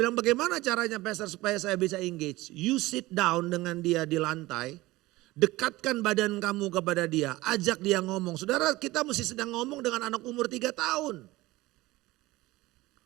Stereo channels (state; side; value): quieter; left; 19.1 dB